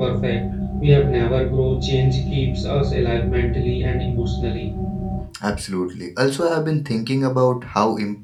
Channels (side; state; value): both; identical; correlation 1.00